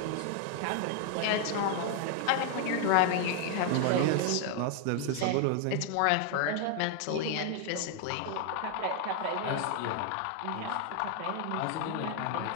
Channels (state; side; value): different; both; correlation 0.00